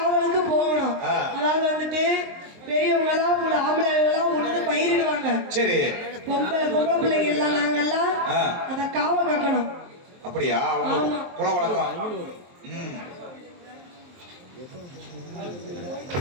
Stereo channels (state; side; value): late; left; 23 ms